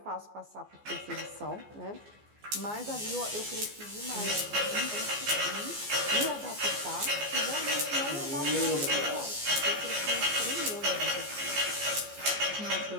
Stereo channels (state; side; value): late; left; 14 ms